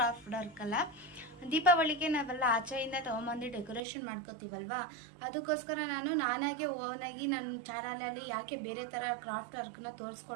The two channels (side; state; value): left; drops out; at 3.8 s